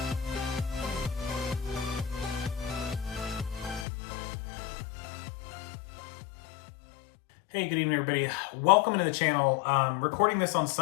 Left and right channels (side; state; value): right; drops out; at 3.9 s